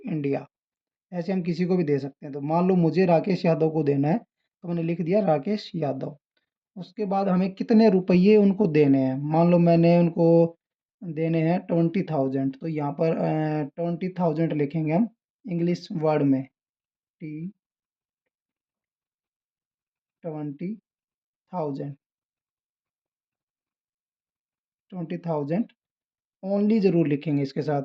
इंडिया। ऐसे हम किसी को भी दे सकते हैं। तो मान लो मुझे राकेश यादव को देना है, तो मैंने लिख दिया राकेश यादव। उसके बाद हमें कितने रुपये उनको देने हैं, मान लो मैंने उनको देने हैं 20,000, तो यहाँ पर 20,000 लिखेंगे हम इंग्लिश वर्ड में। T 20,000, 20,000 ओनली ज़रूर लिखेंगे इसके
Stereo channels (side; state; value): both; identical; correlation 1.00